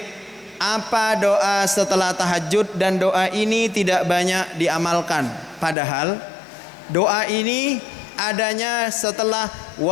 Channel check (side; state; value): right; drops out; at 5.8 s